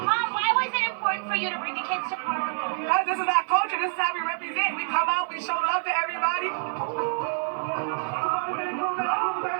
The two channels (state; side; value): silent; left; digital silence